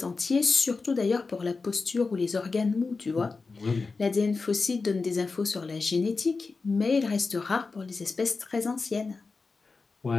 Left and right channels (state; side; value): quieter; right; 4.2 dB